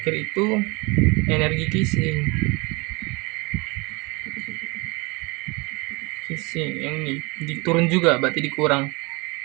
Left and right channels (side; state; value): left; quieter; 26.7 dB